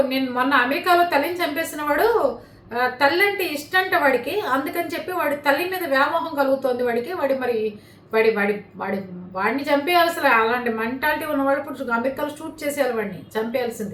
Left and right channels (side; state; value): both; identical; correlation 1.00